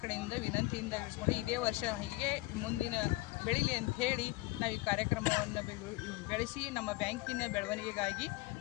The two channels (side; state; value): right; quieter; 20.7 dB